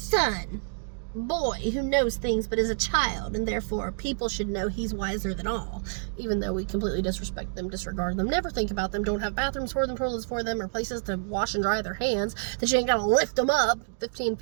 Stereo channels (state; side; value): silent; left; digital silence